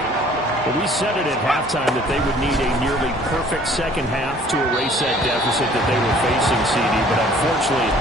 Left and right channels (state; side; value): normal; both; correlation 0.54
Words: Well, we said it at halftime that they would need a nearly perfect 2nd half to erase that deficit that they were facing, CD. But unfortunately,